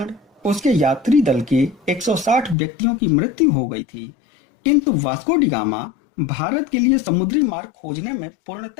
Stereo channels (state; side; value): drops out; right; at 2.6 s